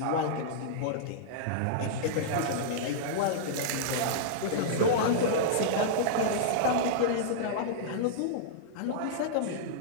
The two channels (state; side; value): different; both; correlation -0.02